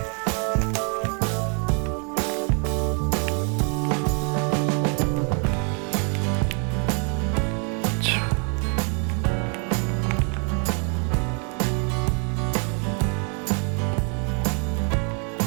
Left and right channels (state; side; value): quieter; left; 38.5 dB